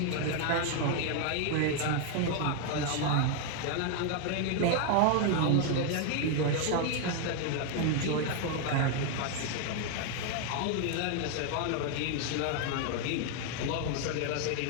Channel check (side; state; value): both; different; correlation 0.01